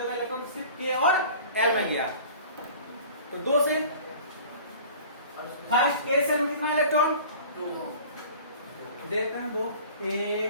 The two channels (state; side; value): inverted; both; correlation -0.44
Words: इलेक्ट्रॉन सिर्फ के और एल में गया, तो 2 सेल। फर्स्ट के सेल में कितना इलेक्ट्रॉन? 2 देखते हैं। 2 1